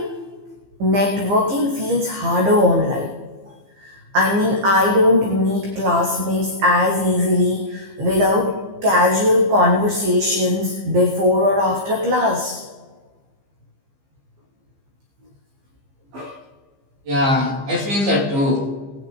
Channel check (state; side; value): late; left; 15 ms